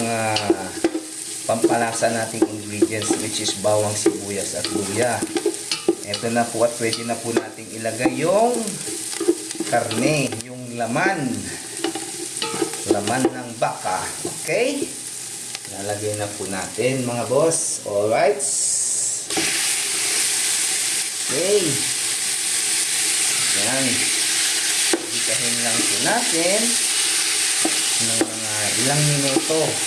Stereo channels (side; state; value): both; identical; correlation 1.00